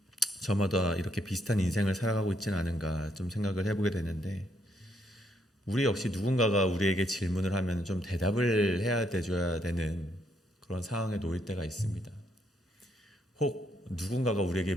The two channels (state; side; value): normal; both; correlation 0.73